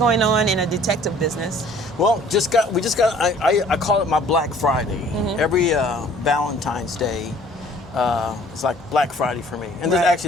on in a detective business. Well, I call it my Black Friday. Mm-hmm. Every Valentine's Day, it's like Black Friday for me. And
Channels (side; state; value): both; normal; correlation 0.54